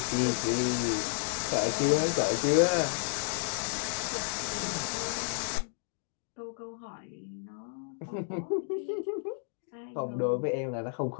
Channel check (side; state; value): right; silent; digital silence